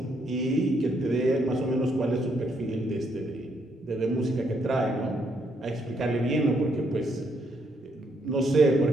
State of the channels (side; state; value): both; normal; correlation 0.74